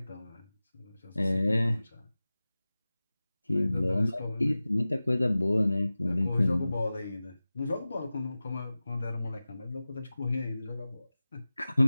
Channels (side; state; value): both; inverted; correlation -0.97